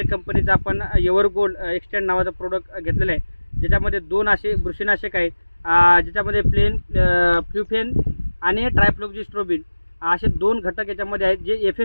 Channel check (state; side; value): inverted; both; correlation -1.00